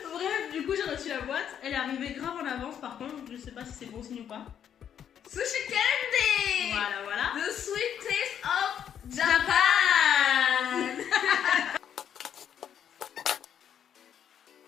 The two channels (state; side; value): quieter; right; 9.1 dB